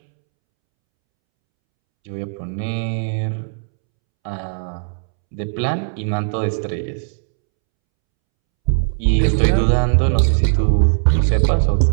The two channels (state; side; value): silent; left; 67 dB below the other